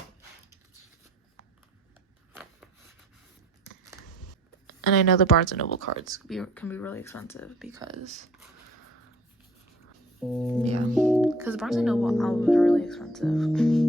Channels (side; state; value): both; normal; correlation 0.55